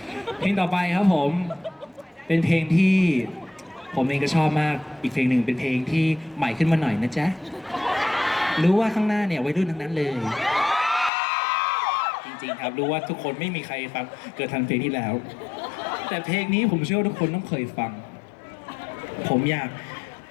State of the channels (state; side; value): drops out; right; at 11.1 s